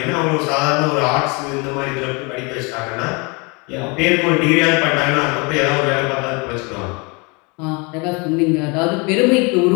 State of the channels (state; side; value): quieter; right; 29.9 dB